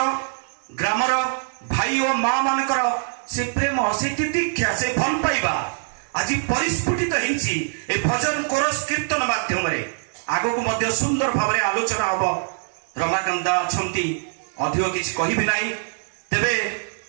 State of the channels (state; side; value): silent; left; 63 dB below the other